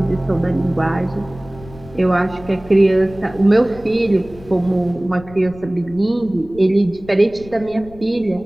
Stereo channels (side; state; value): left; noise; rumble, 19 dB below the sound